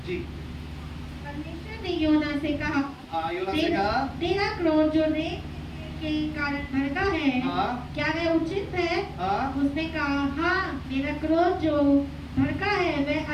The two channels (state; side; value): identical; both; correlation 1.00